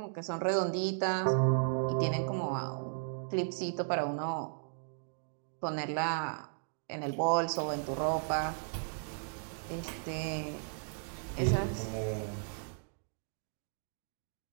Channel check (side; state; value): left; silent; digital silence